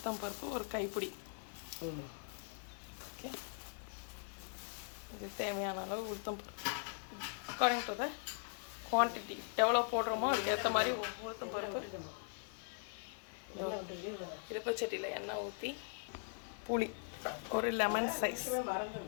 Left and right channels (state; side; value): silent; right; 51 dB below the other